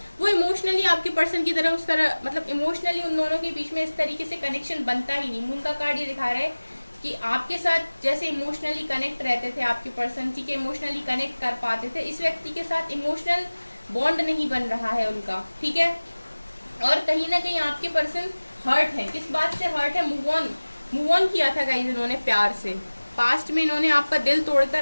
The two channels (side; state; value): both; inverted; correlation -1.00